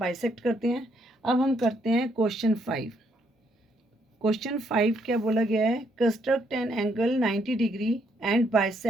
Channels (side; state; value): both; normal; correlation 0.72